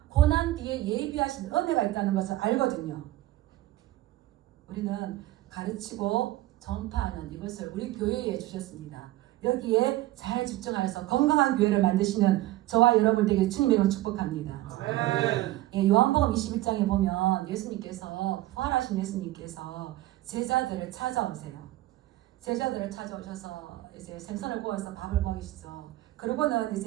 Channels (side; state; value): left; quieter; 16.5 dB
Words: 고난 뒤에 예비하신 은혜가 있다는 것을 알거든요. 우리는 가르치고 전파하는 이것을 우리 교회에 주셨습니다. 여기에 잘 집중하여서 건강한 교회를 만드시는 저와 여러분 되게 주님의 이름으로 축복합니다. 예, 요한복음 21장에 보면 예수님께서 부활하신 예수님께서 제자들을 찾아오세요. 제자들을 찾아오셔서 이제 생선을 구워서 밥을 먹이시죠. 그러고는